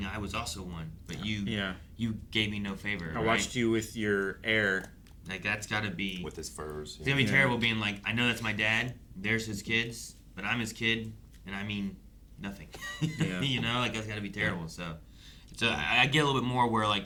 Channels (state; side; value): identical; both; correlation 1.00